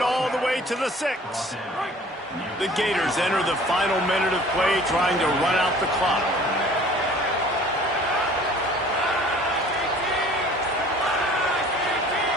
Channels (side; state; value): both; normal; correlation 0.49